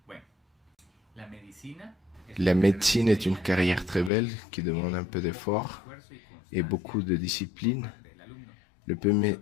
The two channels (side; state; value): right; drops out; at 4.1 s